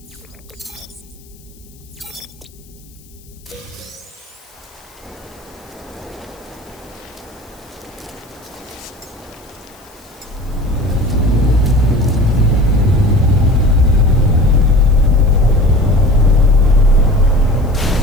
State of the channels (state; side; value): noise; left; hiss, 27 dB below the sound